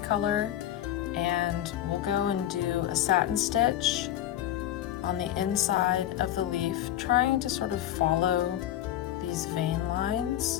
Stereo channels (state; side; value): quieter; right; 12.4 dB